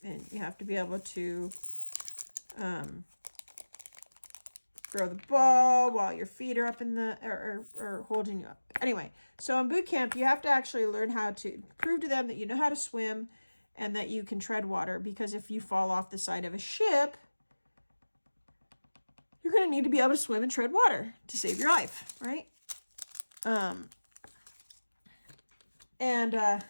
And you have to be able to throw the ball while your feet are up in the, or holding you up. Anyway, so in boot camp, you have to actually learn how to prove to them that you know how to swim and that you can tread water, because if you fall off the side of a ship, you're going to need to be able to swim and tread water to save your life, right?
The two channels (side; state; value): both; inverted; correlation -1.00